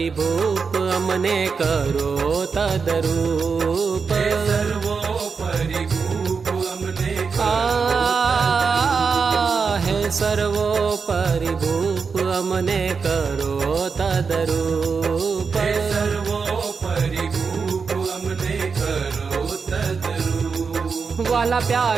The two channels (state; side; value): quieter; left; 5.3 dB